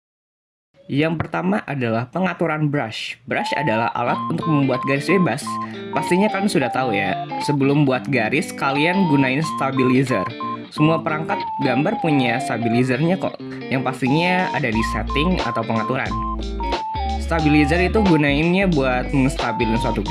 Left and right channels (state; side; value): identical; both; correlation 1.00